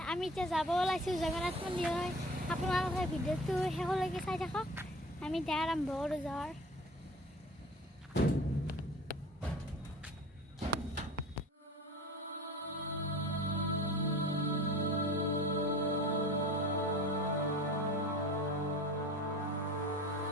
আমি এতিয়া যাব ওলাইছোঁ জগন্নাথ মন্দিৰলৈ আপোনালোকে ভিডিঅ'টো শেষলৈকে চাই থাকক আমি এতিয়া আৰম্ভ কৰোঁ যোৱাৰ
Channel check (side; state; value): both; normal; correlation 0.40